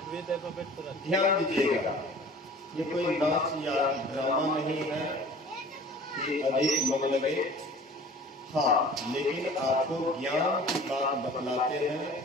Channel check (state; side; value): normal; both; correlation 0.45